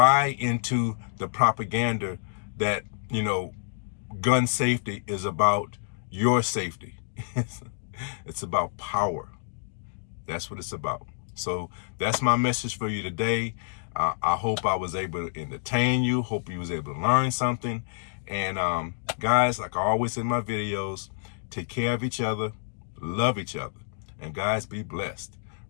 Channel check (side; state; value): right; silent; digital silence